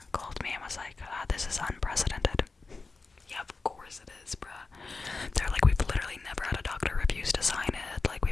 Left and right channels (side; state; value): right; quieter; 3.9 dB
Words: called me and was like, this is unprecedented. Yeah, of course it is, bruh. They're like, we've literally never had a doctor refuse to sign it. Like,